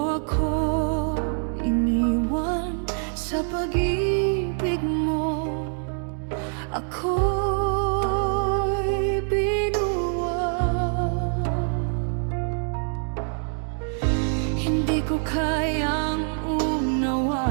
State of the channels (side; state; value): left; silent; 57 dB below the other